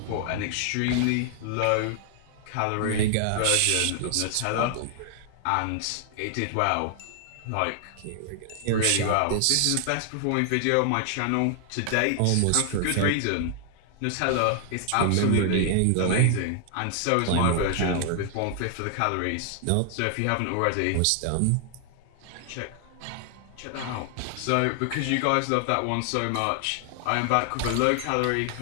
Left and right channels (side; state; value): both; different; correlation 0.00